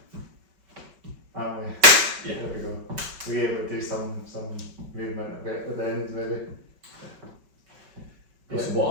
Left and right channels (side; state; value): left; late; 5.2 ms